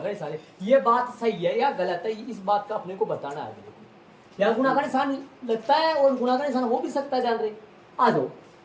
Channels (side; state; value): both; identical; correlation 1.00